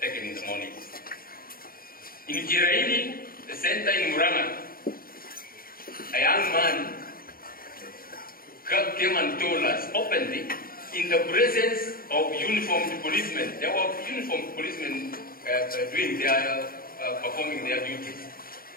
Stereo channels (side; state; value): right; late; 0.42 ms